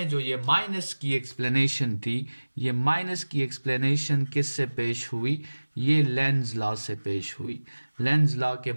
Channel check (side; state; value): both; inverted; correlation -1.00